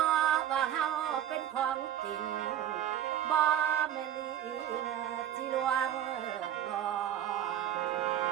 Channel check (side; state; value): left; quieter; 10.9 dB